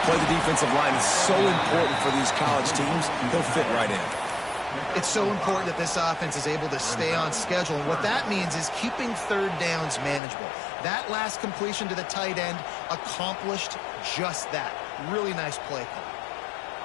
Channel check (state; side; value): drops out; right; at 10.2 s